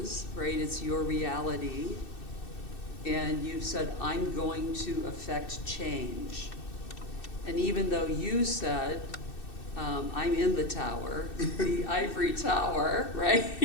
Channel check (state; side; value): late; right; 2.6 ms